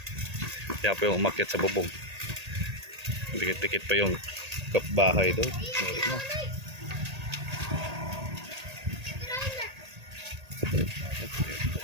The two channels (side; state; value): left; late; 1.8 ms